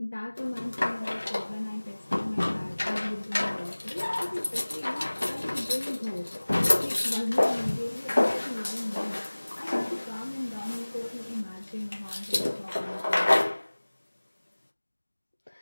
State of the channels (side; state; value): both; inverted; correlation -1.00